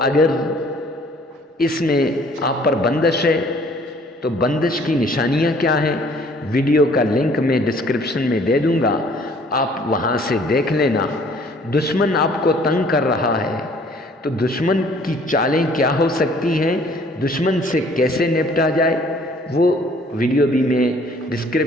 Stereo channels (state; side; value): normal; both; correlation 0.57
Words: اس میں آپ پر بندش ہے تو بندش کی نشانیاں کیا ہیں؟ ویڈیو کا لنک میں ڈسکرپشن میں دے دوں گا، آپ وہاں سے دیکھ لینا۔ دشمن آپ کو تنگ کر رہا ہے تو دشمن کی چالیں کیا ہو سکتی ہیں، دشمن سے کیسے نپٹا جائے، وہ ویڈیو بھی میں